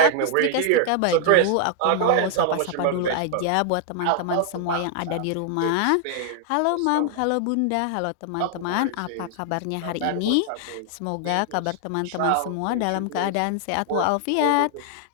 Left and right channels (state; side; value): different; both; correlation 0.00